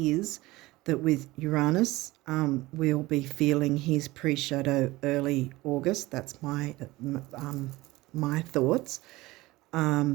that with Uranus, we'll be feeling his pre-shadow early August. That's my thoughts.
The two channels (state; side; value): quieter; left; 19.6 dB